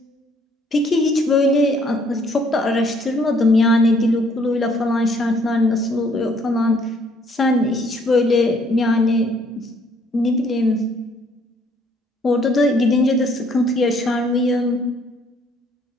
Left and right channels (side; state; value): both; normal; correlation 0.64